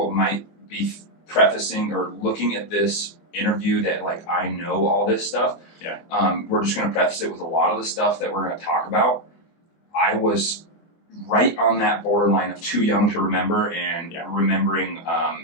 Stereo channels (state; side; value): late; right; 24 ms